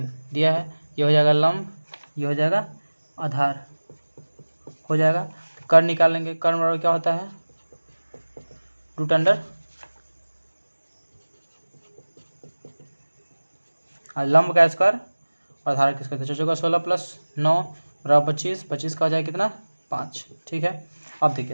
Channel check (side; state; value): both; inverted; correlation -1.00